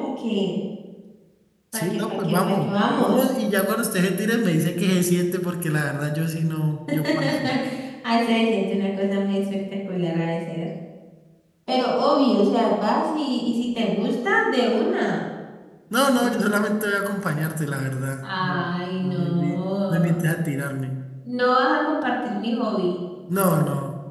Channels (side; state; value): both; identical; correlation 1.00